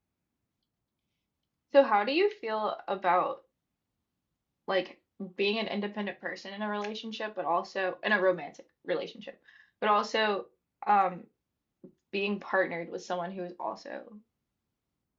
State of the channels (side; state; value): both; identical; correlation 1.00